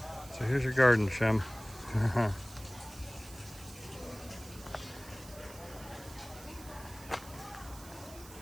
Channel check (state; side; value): noise; right; hiss, 17 dB below the sound